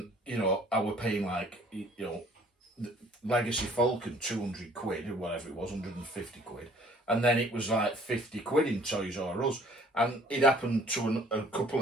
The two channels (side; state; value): both; normal; correlation 0.55